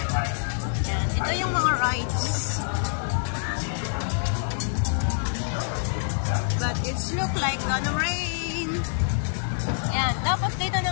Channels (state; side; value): silent; right; digital silence